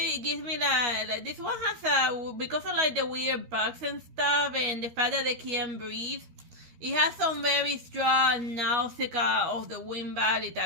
gives me like this one has because of like the weird bugs and stuff and the fact that they can't breathe. It has some very strong nausea of the Wind Valley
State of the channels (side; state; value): left; late; 13 ms